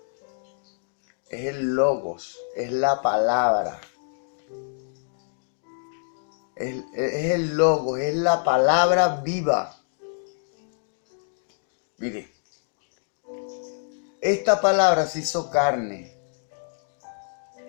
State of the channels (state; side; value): silent; right; digital silence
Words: Es el Logos, es la palabra. Es el Logos, es la palabra viva. Mire, esta palabra se hizo carne